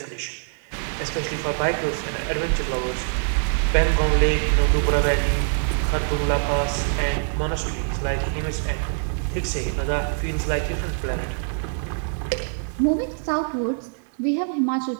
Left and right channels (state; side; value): silent; left; digital silence